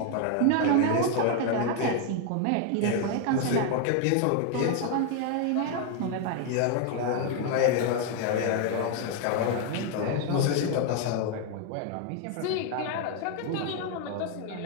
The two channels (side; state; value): both; different; correlation 0.01